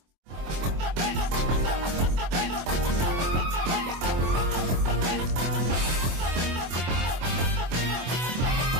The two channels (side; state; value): left; late; 24 ms